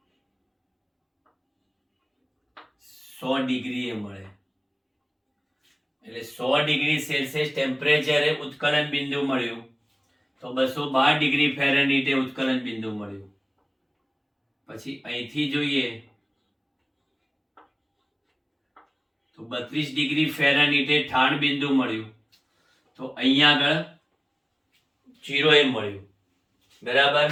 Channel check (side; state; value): both; identical; correlation 1.00